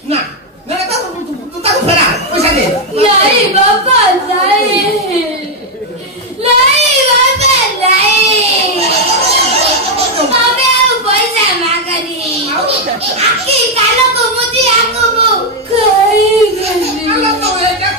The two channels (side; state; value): both; normal; correlation 0.02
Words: ना ना तू ताको फेरा पैसा दे नहीं बाबा नहीं नहीं बाबा नहीं हमें पैसा मांगनी आखी कालो को मुझे आको वो आलो तो एटा